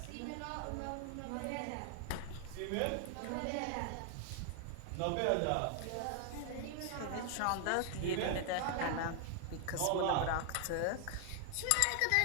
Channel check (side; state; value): both; different; correlation 0.00